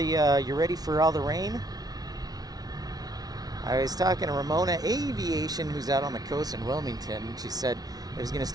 you ready for all the rain? I was talking to Ramona Aviation, who's out on the coast in Wilmington. She said it was going to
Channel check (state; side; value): late; left; 0.19 ms